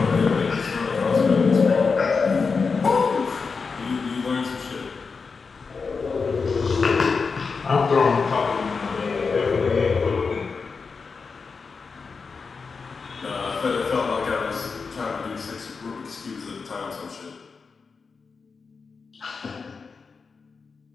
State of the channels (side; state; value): right; quieter; 4.9 dB